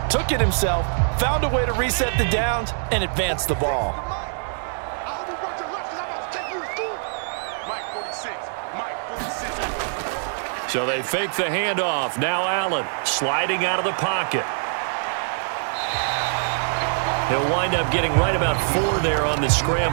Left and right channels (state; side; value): silent; left; digital silence